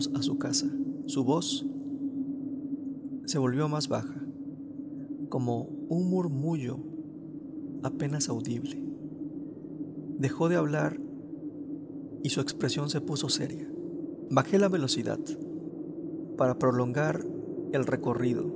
a su casa. Su voz se volvió más baja, como un murmullo apenas audible. Dejó de hablar y su expresión se puso seria. Bajé la velocidad para prolongar el recorrido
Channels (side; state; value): both; identical; correlation 1.00